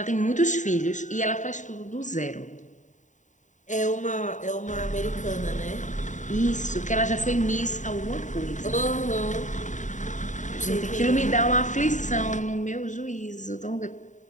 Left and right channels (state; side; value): late; right; 0.36 ms